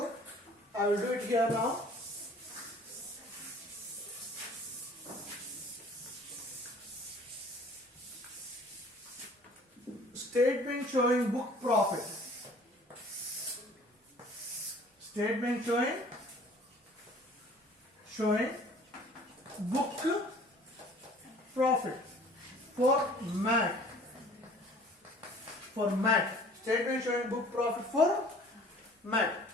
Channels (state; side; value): normal; both; correlation 0.51